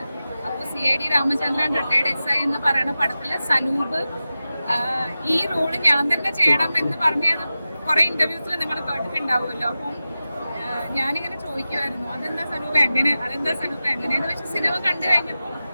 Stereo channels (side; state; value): both; inverted; correlation -0.94